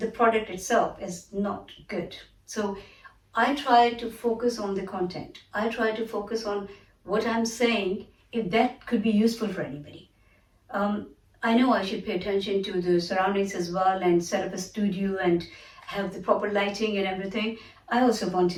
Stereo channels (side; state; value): both; identical; correlation 1.00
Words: product itself is not good. So I try to focus on the content. I try to focus on what I'm saying, if that could be useful for anybody. um, I know I should pay attention to the surroundings as well and set up a studio and have the proper lighting and everything. I also want